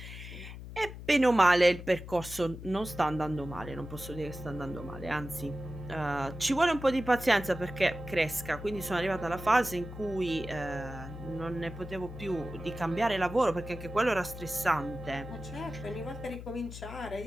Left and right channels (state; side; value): noise; left; hum, 11 dB below the sound